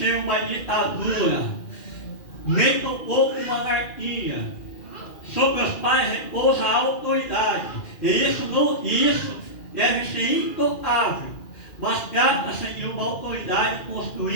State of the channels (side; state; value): right; late; 2.4 ms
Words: uma ditadura, nem tampouco uma anarquia. Sobre os pais repousa a autoridade, e isso deve ser intocável, mas trata-se de uma autoridade